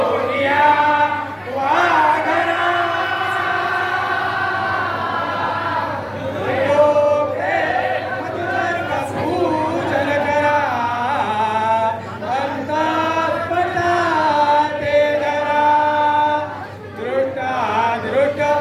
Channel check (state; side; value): identical; both; correlation 1.00